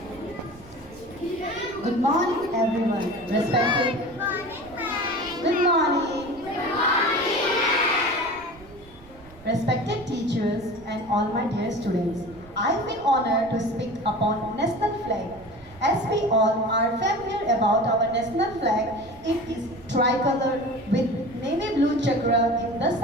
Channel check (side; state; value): right; noise; rumble, 22 dB below the sound